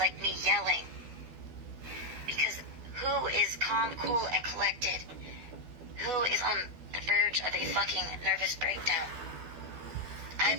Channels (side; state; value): left; late; 12 ms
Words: me yelling. Because who is calm, cool, and collected? Who is on the verge of a fucking nervous breakdown?